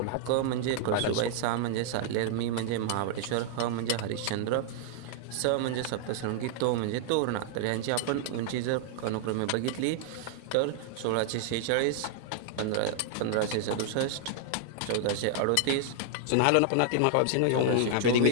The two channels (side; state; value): both; different; correlation -0.01